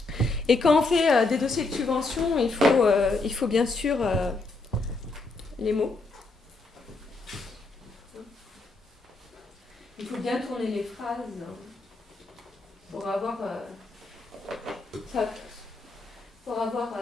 Et quand on fait des dossiers de subvention, il faut bien sûr les mots. Il faut bien tourner les phrases pour avoir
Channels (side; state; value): right; quieter; 3.4 dB